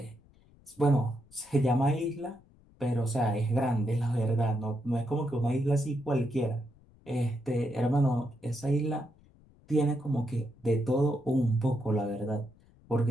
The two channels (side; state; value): left; noise; rumble, 28 dB below the sound